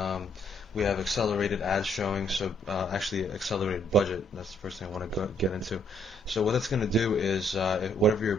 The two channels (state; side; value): normal; both; correlation 0.69